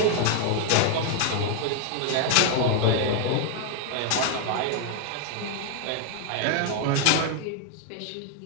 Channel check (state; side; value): different; both; correlation 0.00